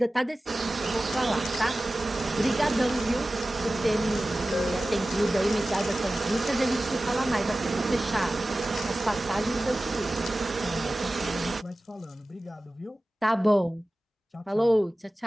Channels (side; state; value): both; normal; correlation 0.96